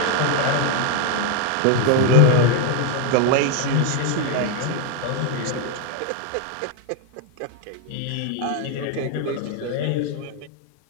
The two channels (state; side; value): different; both; correlation 0.01